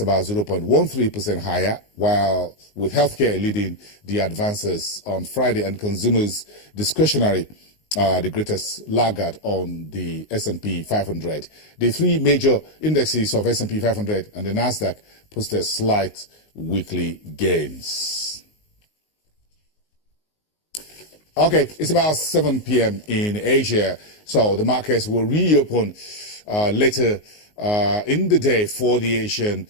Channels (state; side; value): late; right; 19 ms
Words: 0.13% higher, while with healthcare leading the advances on Friday and consumers discretionary, the greatest laggard on the S&P 500. The 3 major indexes of S&P 500 and the Nasdaq posted slight weekly gains. Okay, it's about 7 p.m. in Asia, so the markets will reopen later in the day for the Asian